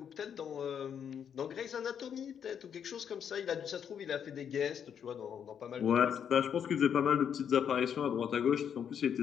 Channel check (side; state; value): right; quieter; 8.1 dB